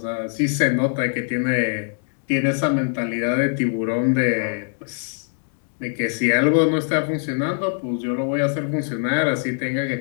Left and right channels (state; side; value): silent; right; 60 dB below the other